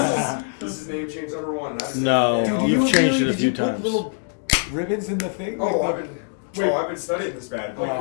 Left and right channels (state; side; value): silent; right; digital silence